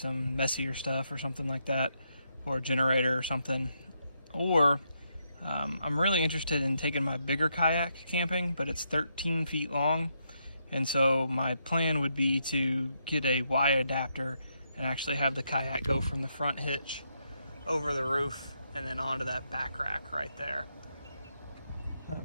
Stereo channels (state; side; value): inverted; both; correlation -0.79